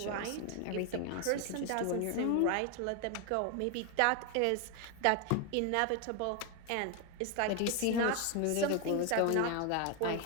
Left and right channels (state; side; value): different; both; correlation 0.01